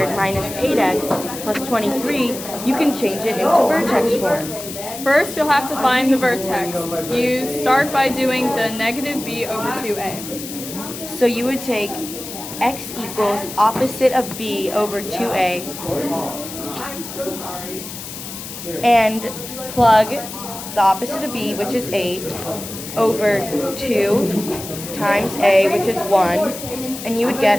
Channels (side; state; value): left; noise; hiss, 10 dB below the sound